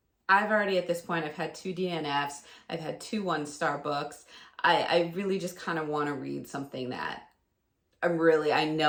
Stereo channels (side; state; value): both; identical; correlation 1.00